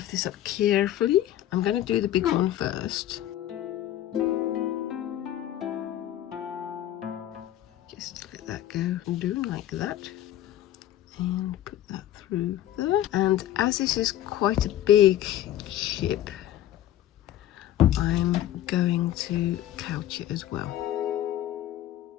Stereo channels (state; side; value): quieter; right; 12.6 dB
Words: this up carefully. I'm going to do the big one first. Just let that go and do like that. And put that through there. And as this is quite a big chip, I'm going to couch it as well.